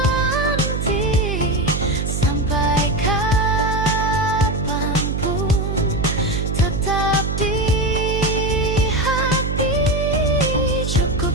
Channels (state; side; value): noise; right; hum, 1 dB below the sound